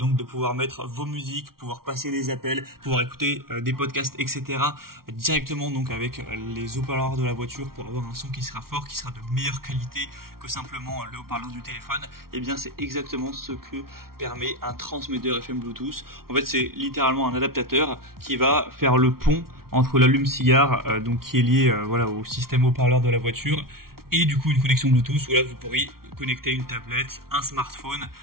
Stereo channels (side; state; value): left; late; 0.93 ms